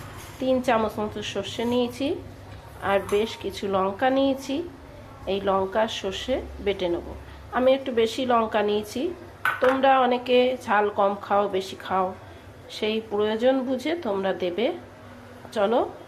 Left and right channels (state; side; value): identical; both; correlation 1.00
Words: 3 চামচ মতো সর্ষে নিয়েছি আর বেশ কিছু লঙ্কা নিয়েছি। এই লঙ্কা সর্ষে বেটে নেব। আমি একটু বেশি লঙ্কা নিয়েছি, তোমরা অনেকে ঝাল কম খাও বেশি খাও, সেই প্রয়োজন বুঝে তোমরা দেবে। চলো